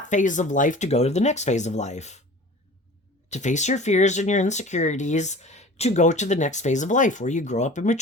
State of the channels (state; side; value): normal; both; correlation 0.41